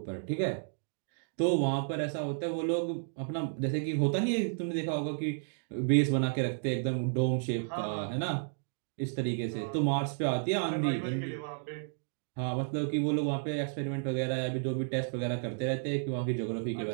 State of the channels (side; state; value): left; silent; digital silence